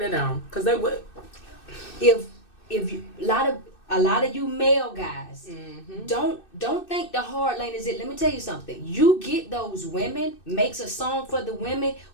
cause they would. If you, a lot of you male guys, don't think the hard lane is it. Let me tell you something. You get those women, makes a song for the women.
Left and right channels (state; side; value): late; right; 2.6 ms